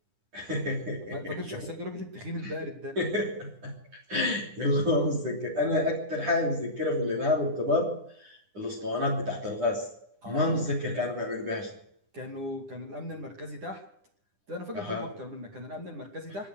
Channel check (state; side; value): late; left; 9.9 ms